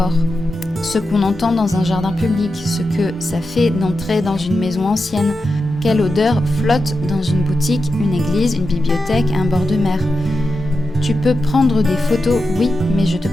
ce qu'on entend dans un jardin public, ce que ça fait d'entrer dans une maison ancienne, quelle odeur flotte dans une boutique, une église, une bibliothèque, un bord de mer. Tu peux prendre des photos, oui, mais je te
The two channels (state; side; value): normal; both; correlation 0.89